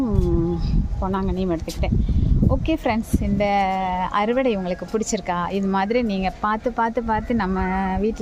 பொன்னாங்கண்ணியும் எடுத்துக்கிட்டேன். ஓகே ஃப்ரெண்ட்ஸ், இந்த அறுவடை உங்களுக்கு பிடிச்சிருக்கா? இது மாதிரி நீங்கள் பார்த்து நம்ம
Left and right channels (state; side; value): identical; both; correlation 1.00